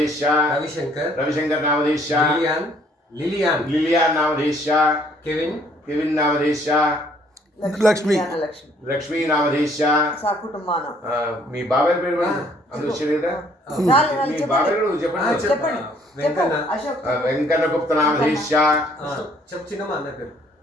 रविशंकर नामधीश्या लिलियान नामधीश्या केविन नामधीश्या लक्ष्मी नामधीश्या साकुटुंबान मी बाबेर पेరు अंदु శరీరా మీ బాబేరు చెప్పండి వెంకన్న గుప్త నామధీశ్యా చిన్నమ్మ అన్న పేరు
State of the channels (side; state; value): both; normal; correlation 0.62